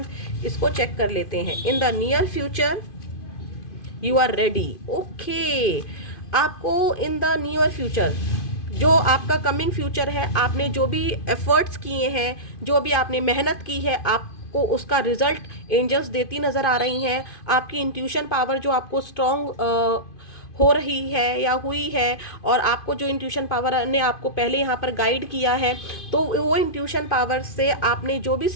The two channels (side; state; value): right; late; 2.5 ms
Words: इसको चेक कर लेते हैं। In the near future you are ready. Okay, आपको इन द नियर फ्यूचर, जो आपका कमिंग फ्यूचर है, आपने जो भी एफर्ट्स किए हैं, जो भी आपने मेहनत की है, आपको उसका रिजल्ट एंजल्स देती नज़र आ रही हैं। आपकी इंट्यूशन पावर जो आपको स्ट्रॉन्ग हो रही है या हुई है, और आपको जो इंट्यूशन पावर ने आपको पहले यहाँ पर गाइड किया है, तो वो इंट्यूशन पावर से आपने जो भी